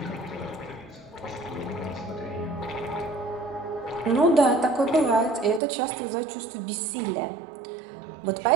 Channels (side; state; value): left; drops out; at 5.6 s